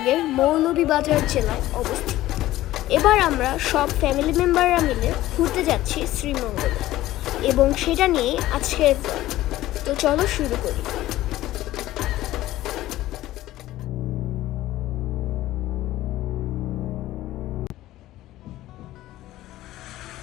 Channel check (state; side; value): quieter; right; 15.5 dB